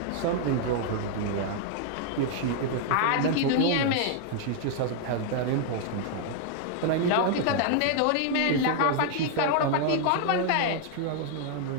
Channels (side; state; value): both; different; correlation 0.00